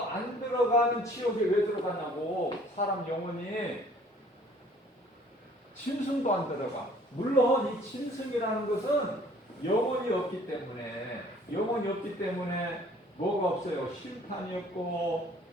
지옥에 왜 들어가냐고. 사람 영혼이 짐승도 안 들어가. 물론 이 짐승이라는 것은 영혼이 없기 때문에 뭐가 없어요? 심판이 없고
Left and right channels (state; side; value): normal; both; correlation 0.55